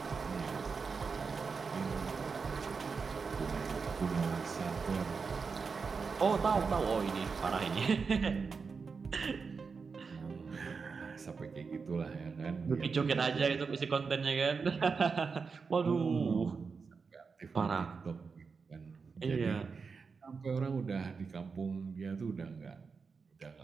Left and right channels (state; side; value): quieter; left; 5.1 dB